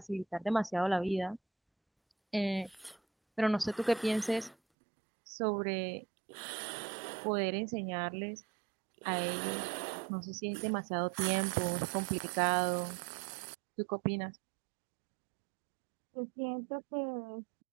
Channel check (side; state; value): left; drops out; at 4.5 s